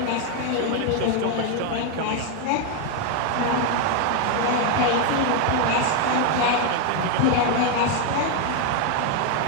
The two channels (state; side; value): different; both; correlation 0.01